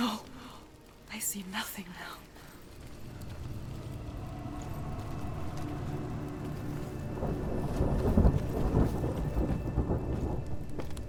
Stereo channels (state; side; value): identical; both; correlation 1.00